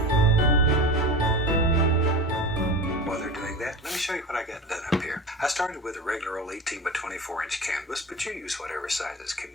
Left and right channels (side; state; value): both; normal; correlation 0.30